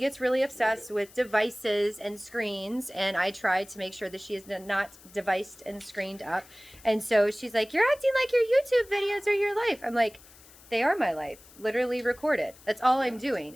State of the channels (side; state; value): left; noise; hiss, 23 dB below the sound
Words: gets really obsessed with devices and screens, and I tried to make sure that she is not deviced and screened up. And so she's like, "You're acting like your YouTube videos are your life." I'm like, they are my life, literally recorded. That's all I'm doing